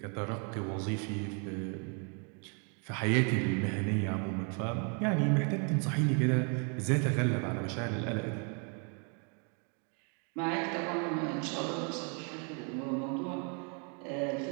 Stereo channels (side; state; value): left; quieter; 38.2 dB